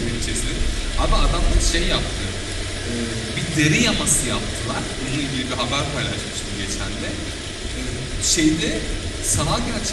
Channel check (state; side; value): identical; both; correlation 1.00